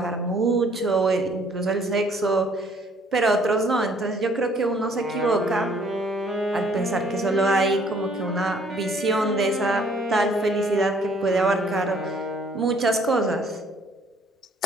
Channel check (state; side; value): normal; both; correlation 0.61